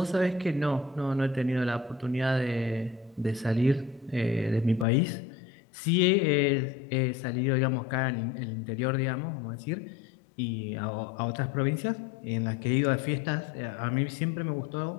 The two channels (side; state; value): right; drops out; at 4.9 s